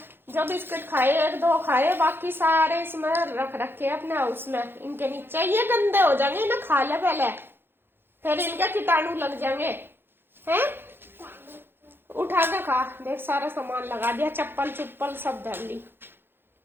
जो बिस्किट खाए, 1-2 खाए, बाकी सारे इसमें रख रखे अपने हाउस में। इनके नीचे ये गंदे हो जाएंगे ना, खा ले पहले, फिर इनके कीटाणु लग जाएंगे। हैं उठा के खा। देख सारा सामान लगा दिया, चप्पल चुप्पल सब धर ली।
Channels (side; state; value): left; late; 0.10 ms